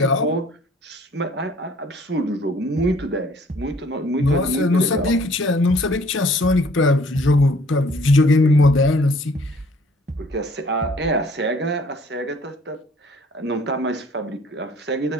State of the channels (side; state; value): both; normal; correlation 0.57